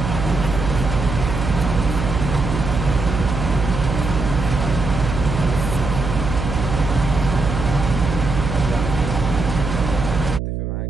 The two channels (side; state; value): right; noise; hum, 4 dB below the sound